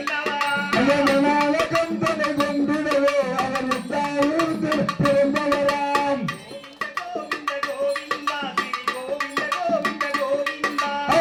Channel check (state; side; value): identical; both; correlation 1.00